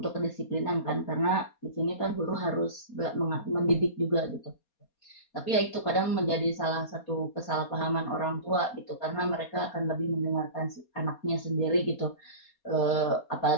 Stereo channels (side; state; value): right; late; 4.2 ms